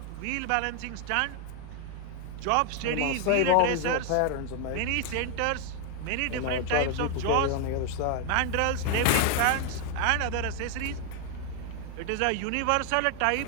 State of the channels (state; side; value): different; both; correlation 0.00